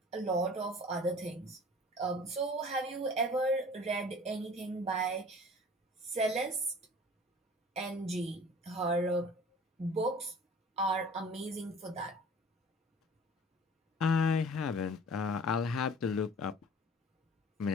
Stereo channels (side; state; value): both; normal; correlation 0.46